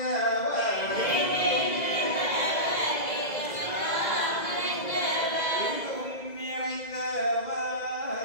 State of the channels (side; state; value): right; late; 2.0 ms